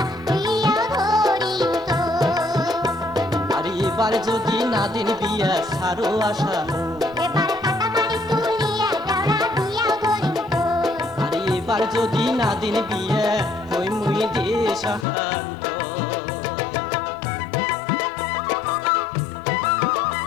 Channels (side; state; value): right; drops out; at 15.1 s